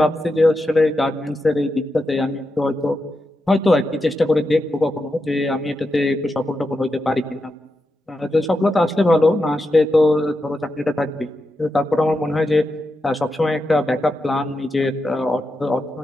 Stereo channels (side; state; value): both; normal; correlation 0.87